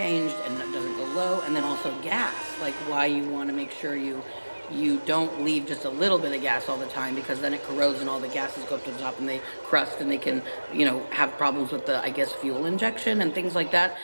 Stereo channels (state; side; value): inverted; both; correlation -1.00